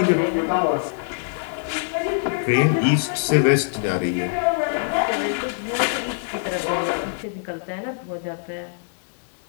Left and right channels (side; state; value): right; silent; digital silence